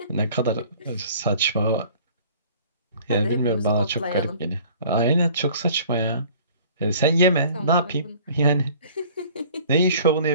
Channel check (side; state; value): both; inverted; correlation -0.51